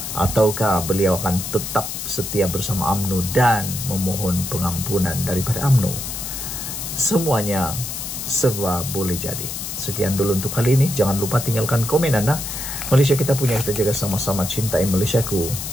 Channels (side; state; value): left; noise; hiss, 6 dB below the sound